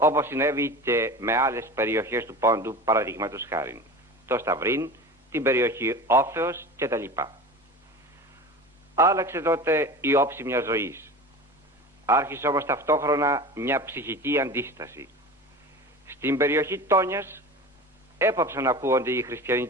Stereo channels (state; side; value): normal; both; correlation 0.33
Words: συνέβη και με άλλες περιοχές του Πόντου, παραδείγματος χάριν, το Σταυρίν, την περιοχή Όφεως κτλ. Άλλαξε τότε η όψη μιας ζωής. Άρχισε όμως ταυτόχρονα μια ψυχική αντίσταση. Στην περιοχή Τόνιας έπαψαν να ακούγονται οι